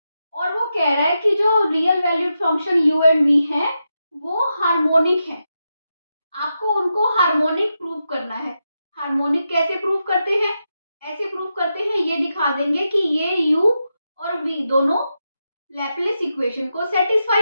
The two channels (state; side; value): inverted; both; correlation -0.87